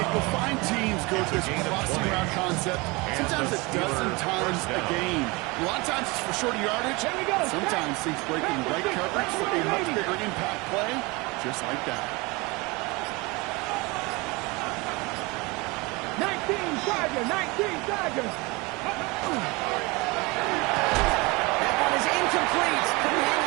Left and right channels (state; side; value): quieter; left; 25.2 dB